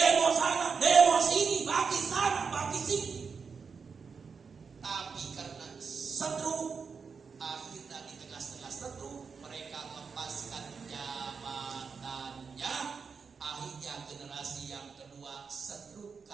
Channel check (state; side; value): quieter; left; 5.5 dB